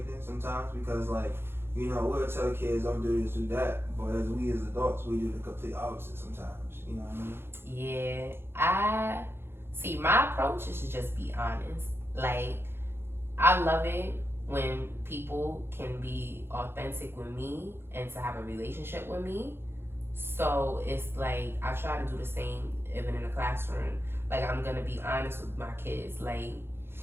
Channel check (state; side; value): late; left; 0.11 ms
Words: sometimes because, like, you know, we'll tell kids don't do this, do that. But as we as adults, we do the complete opposite sometimes. You know what I mean? Yeah. See, my approach is to just be honest. Like, I love it when people can be authentic with me and to have a relationship with me. So it's like I try to do the same even in the classroom. Like, I'm gonna be honest with my kids. Like,